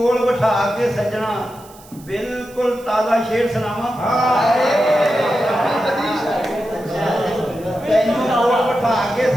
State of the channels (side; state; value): right; noise; hiss, 23 dB below the sound